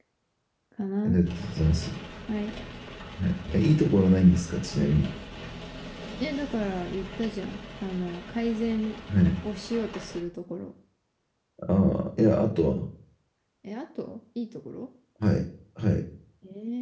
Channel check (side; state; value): both; identical; correlation 1.00